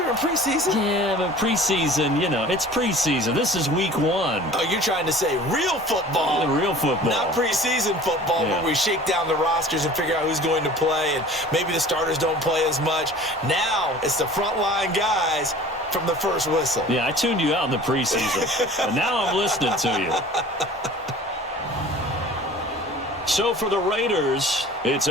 in preseason? Yeah, but preseason, you know, it's preseason. This is Week 1. Oh, you're trying to say real football. Yeah, real football. Not preseason football where we shake down the rosters and figure out who's going to play, and maybe the starters don't play as much. Now it's the frontline guys from the first whistle. Yeah, I tuned you out in the preseason, and now I'm listening to you. So for the Raiders, it's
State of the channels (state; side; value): normal; both; correlation 0.45